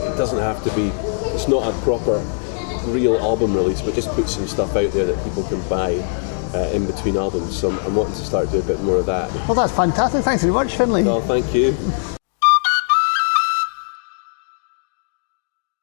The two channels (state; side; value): silent; right; digital silence